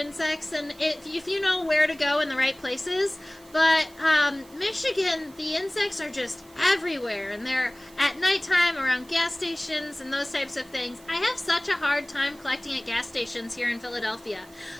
and if you know where to go in the right places. But Michigan, the insects are just everywhere, and they're at nighttime around gas stations and those types of things. I have such a hard time collecting at gas stations here in Philadelphia.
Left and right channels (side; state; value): right; noise; hiss, 25 dB below the sound